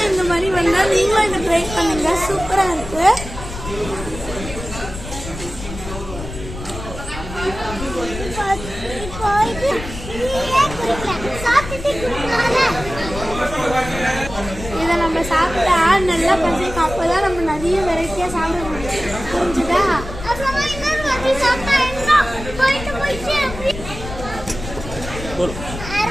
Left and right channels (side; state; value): left; noise; rumble, 10 dB below the sound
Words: இந்த மாதிரி வந்தால் நீங்களும் இதை ட்ரை பண்ணுங்க, சூப்பராக இருக்குது. இதை நம்ம சாப்பிட்டா நல்லா பசிக்கும், அப்போதான் நம்ம நிறைய வெரைட்டியா சாப்பிட முடியும். புரிஞ்சுதா?